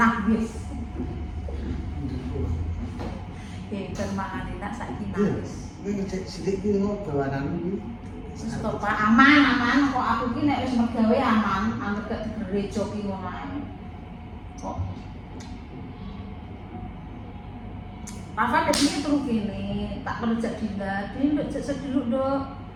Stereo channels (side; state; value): both; identical; correlation 1.00